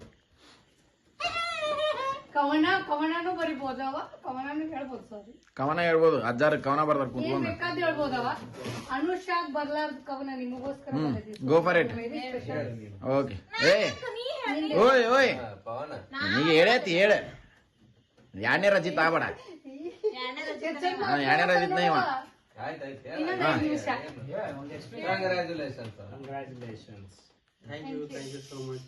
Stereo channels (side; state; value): both; identical; correlation 1.00